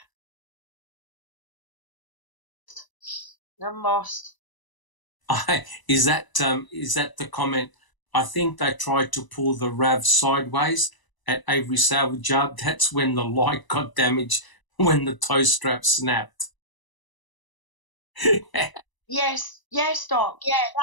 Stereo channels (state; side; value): late; right; 1.0 ms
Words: I'm lost. Is that the comment? I think they tried to pull the RAV sideways at Avery Salvage Yard. That's when the light got damaged, when the tow strap snapped. Yes, Doc. Yeah,